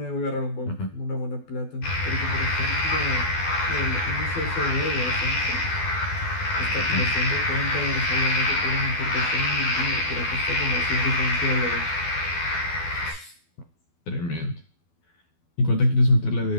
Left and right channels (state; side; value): late; right; 12 ms